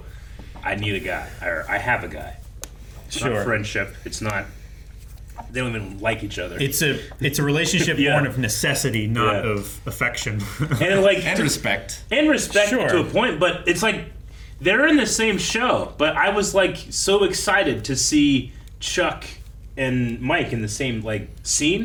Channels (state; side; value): identical; both; correlation 1.00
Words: I need a guy, or I have a guy. It's Sure. not friendship. It's not. They don't even like each other. It's a relationship Yeah. born of necessity, not Yeah. of affection. and like And respect. and respect Sure. to a point, but it's like they're in the same show. But I was like so excited to see Chuck and Mike in the same like